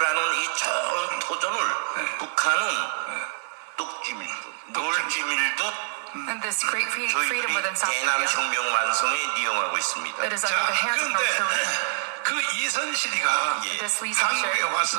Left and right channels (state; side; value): silent; left; digital silence